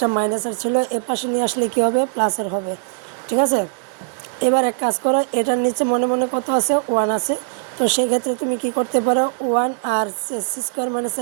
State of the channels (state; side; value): silent; left; digital silence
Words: মাইনাসের ছিল, এ পাশে নিয়ে আসলে কী হবে, প্লাসের হবে, ঠিক আছে। এবার এক কাজ করো, এটার নিচে মনে মনে কত আছে, 1 আছে, তো সেক্ষেত্রে তুমি কি করতে পারো, 1 আর সি স্কোয়ার মাইনাস